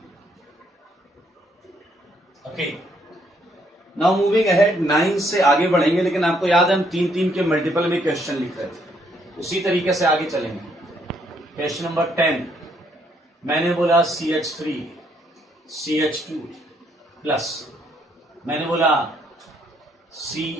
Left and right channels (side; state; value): both; normal; correlation 0.71